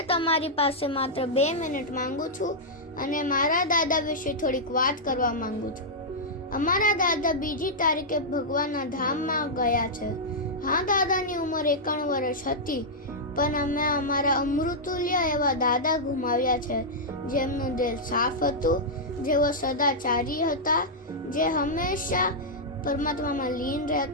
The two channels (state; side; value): normal; both; correlation -0.08